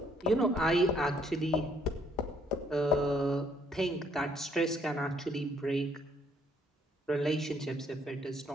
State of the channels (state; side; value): normal; both; correlation 0.66